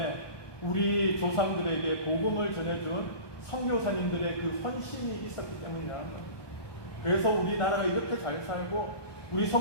우리 조상들에게 복음을 전해준 선교사님들의 그 헌신이 있었기 때문이라는 겁니다. 그래서 우리나라가 이렇게 잘 살고 우리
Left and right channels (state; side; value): late; right; 1.2 ms